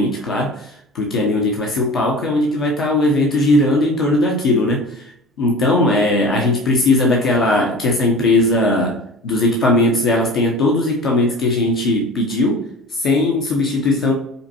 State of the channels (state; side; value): normal; both; correlation 0.38